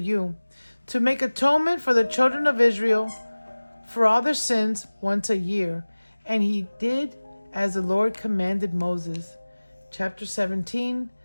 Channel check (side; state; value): both; inverted; correlation -1.00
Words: to make atonement for the children of Israel for all their sins once a year. And he did as the Lord commanded Moses. Chapter 17,